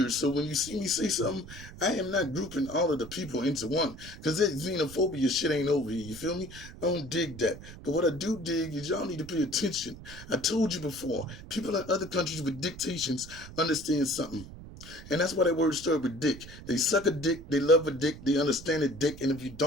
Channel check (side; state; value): right; noise; rumble, 15 dB below the sound